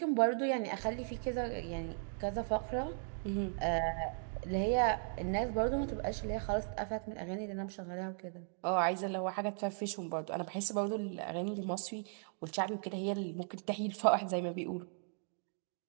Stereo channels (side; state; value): left; silent; 53 dB below the other